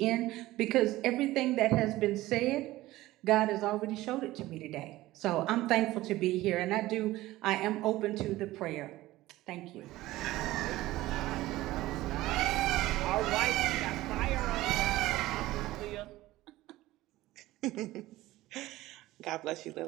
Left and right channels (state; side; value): quieter; left; 17.1 dB